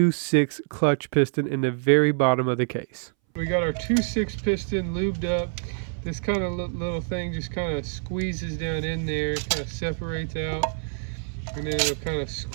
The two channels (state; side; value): silent; left; 60 dB below the other